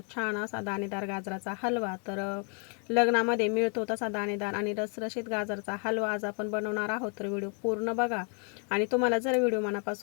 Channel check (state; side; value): quieter; right; 39.6 dB